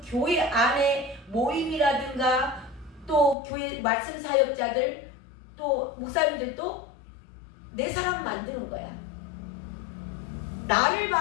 교회 안에 모임이라든가 또 교회 말씀 사역자들 또 목사님들도 내 사람 만드는 거야. 나를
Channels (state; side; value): drops out; right; at 3.4 s